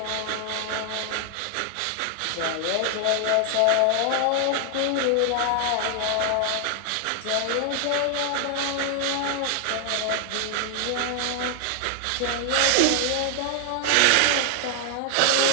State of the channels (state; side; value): different; both; correlation 0.00